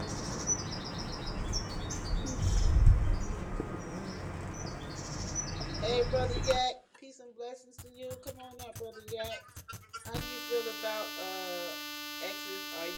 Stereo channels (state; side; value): identical; both; correlation 1.00